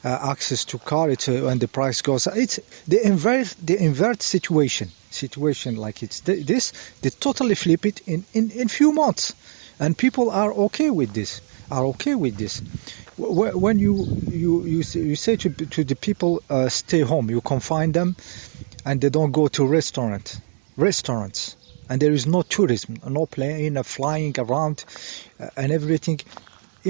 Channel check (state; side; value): silent; left; 58 dB below the other